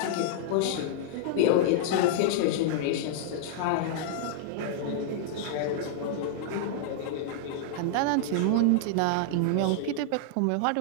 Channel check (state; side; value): different; both; correlation -0.01